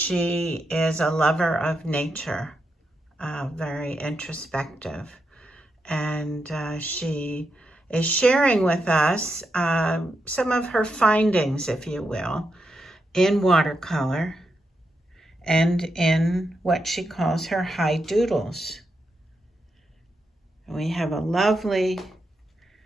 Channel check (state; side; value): normal; both; correlation 0.84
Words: is a lover of nature, very introspective, and she is sharing with us some of her findings, if you will, in watercolor and in what she calls her high doodles. We have a lovely